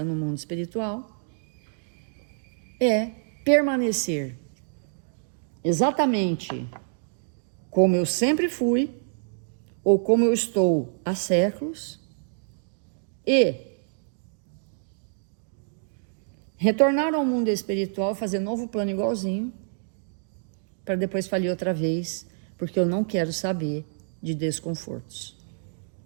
no mundo espiritual, é permanecer exatamente como eu sempre fui, ou como eu estou há séculos, e retornar ao mundo espiritual, fazer novo plano igualzinho, para depois falir outra vez, porque eu não quero saber de desconfortos.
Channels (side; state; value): left; silent; digital silence